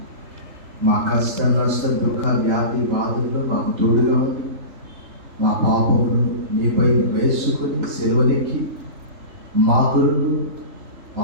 మా కష్ట నష్ట దుఃఖ వ్యాధి బాధల్లో మాకు తోడుగా ఉండి మా పాపమును నీపై వేసుకొని సెలవులెక్కి మా కొరకు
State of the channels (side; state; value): left; late; 3.4 ms